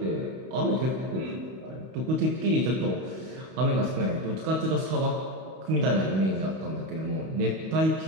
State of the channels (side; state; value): left; late; 31 ms